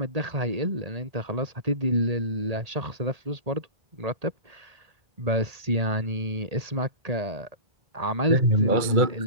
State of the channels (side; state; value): left; late; 2.2 ms